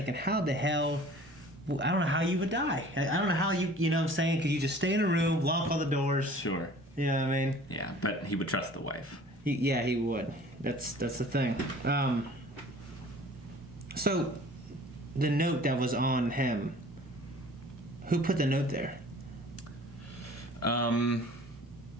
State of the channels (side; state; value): both; normal; correlation 0.48